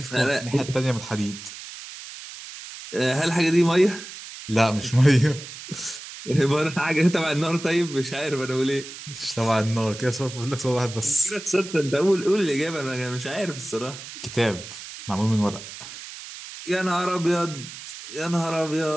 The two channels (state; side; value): noise; right; hiss, 13 dB below the sound